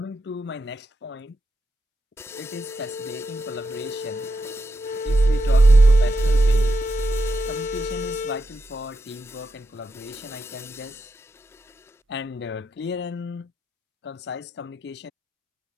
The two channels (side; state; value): both; normal; correlation 0.86